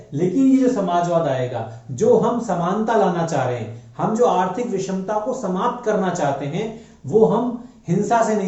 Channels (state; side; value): identical; both; correlation 1.00